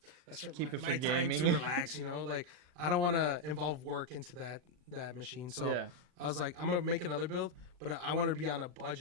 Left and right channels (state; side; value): late; left; 40 ms